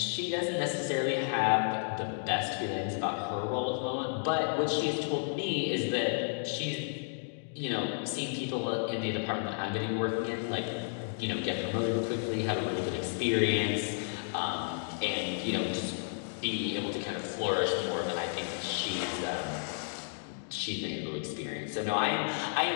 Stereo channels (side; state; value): right; silent; digital silence